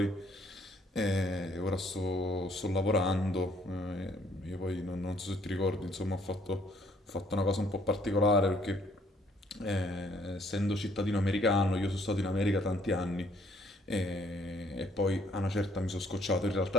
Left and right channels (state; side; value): normal; both; correlation 0.64